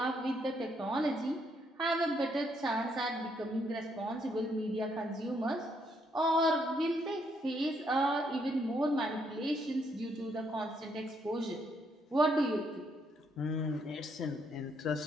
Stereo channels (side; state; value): both; normal; correlation 0.73